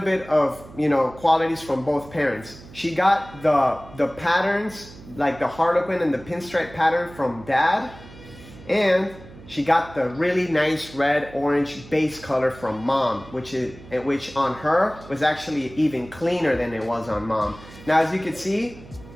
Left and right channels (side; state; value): right; noise; hum, 19 dB below the sound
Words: qualities from both parents. She got the patterns, like the harlequin and the pinstripe pattern from dad, and she got the really nice red orange base color from mom, which on her was actually even cleaner than it was on mom. Now, as you can see,